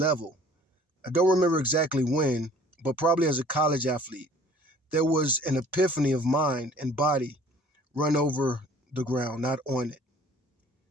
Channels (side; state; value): both; normal; correlation 0.52